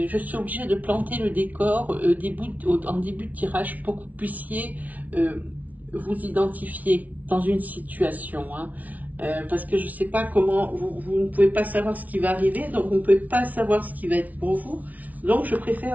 suis obligée de planter le décor en début de tirage pour que vous puissiez vous identifier dans une situation. Hein. Parce que je ne sais pas comment, vous ne pouvez pas savoir ce qui va arriver, donc vous ne pouvez pas savoir ce qui va être pour vous. Donc je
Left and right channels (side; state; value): left; late; 0.073 ms